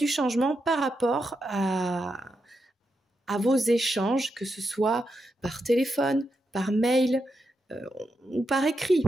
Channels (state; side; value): normal; both; correlation 0.85